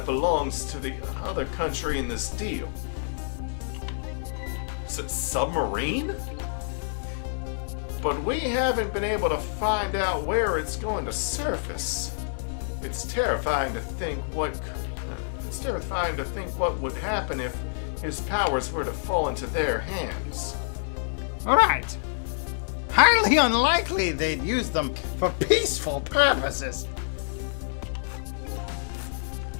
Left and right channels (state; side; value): silent; right; digital silence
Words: belongs to the other country in this deal. Is it submarine? But we haven't been able to find out where it's going to surface. It's terrifying to think what would happen if his powers were to fall into their hands. Right. Highly unlikely they'd use them for peaceful purposes.